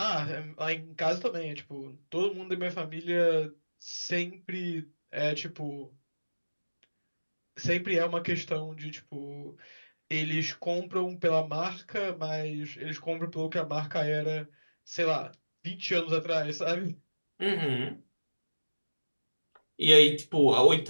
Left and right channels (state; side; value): inverted; both; correlation -1.00